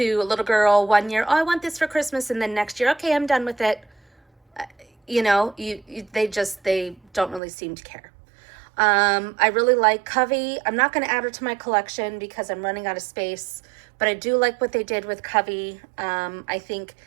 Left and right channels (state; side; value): drops out; left; at 7.4 s